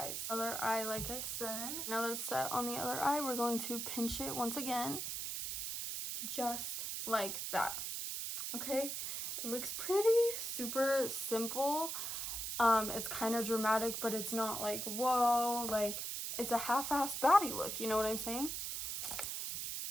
Other eye, like I said. Now that it's set on the other eye, we're going to pinch it once again. Just like that. Okay? It looks pretty. Super simple. It's kind of dramatic, but it's not like, whoa, like, it's a half-assed baddie look, you know what I'm saying?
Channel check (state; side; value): noise; right; hiss, 3 dB below the sound